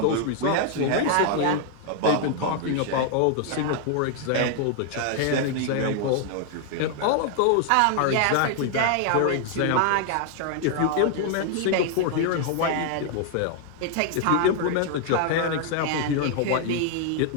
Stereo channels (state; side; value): different; both; correlation 0.00